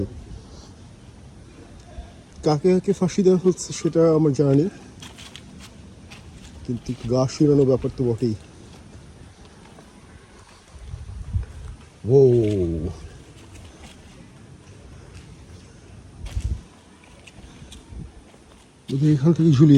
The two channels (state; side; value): identical; both; correlation 1.00